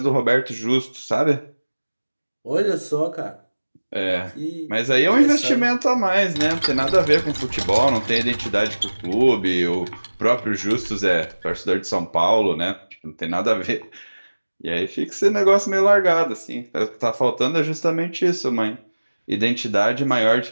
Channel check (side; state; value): both; inverted; correlation -1.00